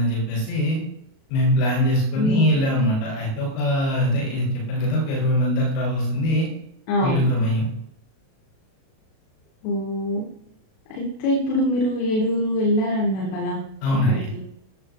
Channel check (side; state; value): right; late; 37 ms